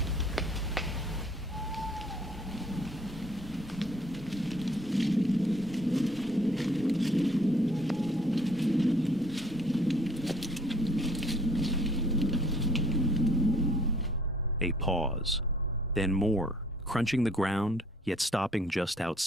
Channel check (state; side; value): normal; both; correlation 0.59